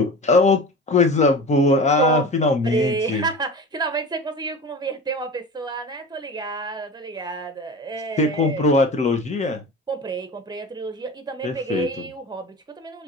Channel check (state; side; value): normal; both; correlation 0.33